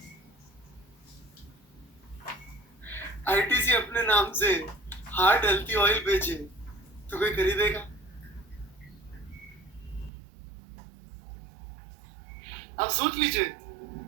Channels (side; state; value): left; drops out; at 10.1 s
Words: आईटीसी अपने नाम से हार्ट हेल्थी ऑयल बेचे तो कोई खरीदेगा? आप सोच लीजिए